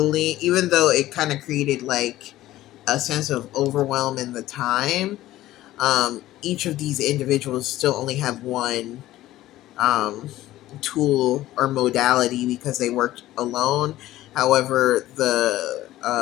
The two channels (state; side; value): quieter; right; 15.2 dB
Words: even though it kind of created like a sense of overwhelm in the time, Each of these individuals still only have one um, tool or modality because they worked alone. However, the